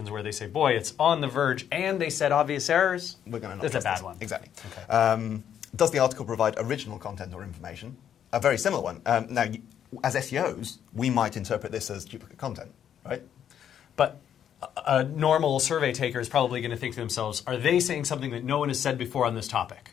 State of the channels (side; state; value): right; quieter; 9.3 dB